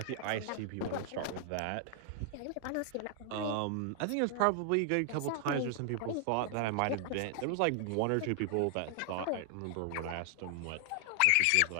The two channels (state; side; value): different; both; correlation 0.00